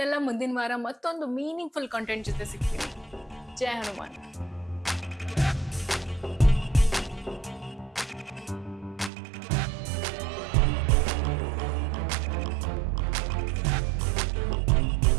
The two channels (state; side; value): drops out; left; at 9.1 s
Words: ಮುಂದಿನ ವಾರ ಮತ್ತೊಂದು ಮೀನಿಂಗ್ಫುಲ್ ಕಂಟೆಂಟ್ ಜೊತೆ ಸಿಗ್ತೀನಿ. ಜೈ ಹನುಮಾನ್.